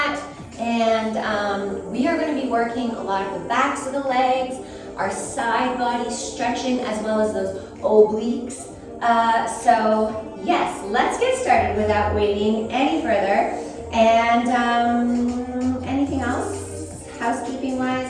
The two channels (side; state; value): both; identical; correlation 1.00